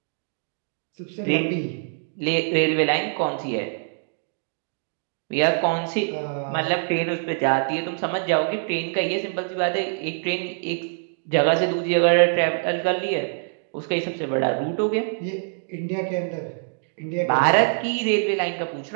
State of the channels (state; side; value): silent; left; digital silence